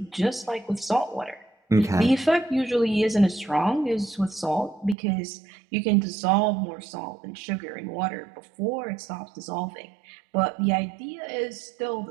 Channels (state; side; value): drops out; left; at 5.0 s